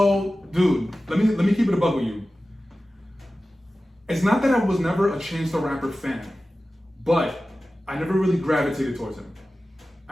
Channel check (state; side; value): normal; both; correlation 0.95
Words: dude, let me keep it a bug with you. It's not that I was never a Chance the Rapper fan, but I never really gravitated towards him.